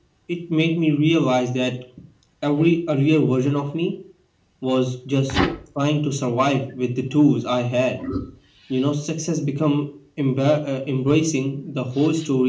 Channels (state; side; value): identical; both; correlation 1.00